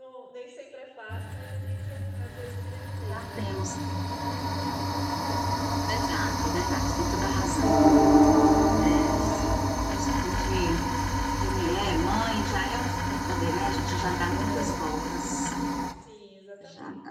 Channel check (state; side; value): identical; both; correlation 1.00